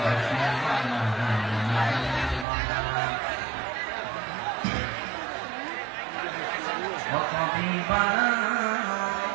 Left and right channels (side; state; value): left; drops out; at 2.5 s